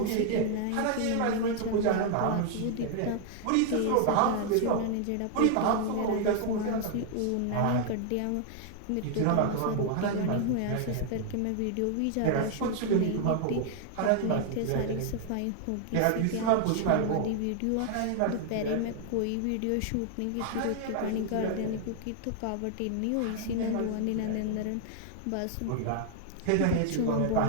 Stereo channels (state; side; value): different; both; correlation 0.00